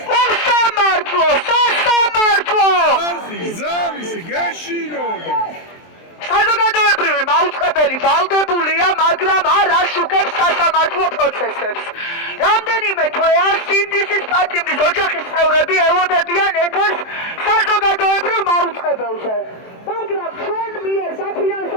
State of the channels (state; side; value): late; right; 23 ms